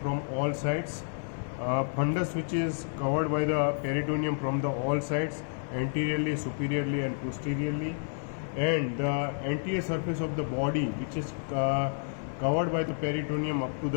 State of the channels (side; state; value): right; silent; digital silence